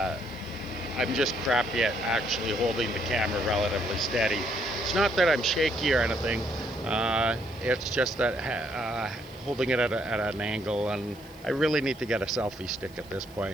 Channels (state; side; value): noise; left; hiss, 24 dB below the sound